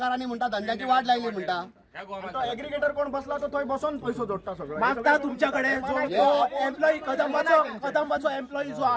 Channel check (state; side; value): identical; both; correlation 1.00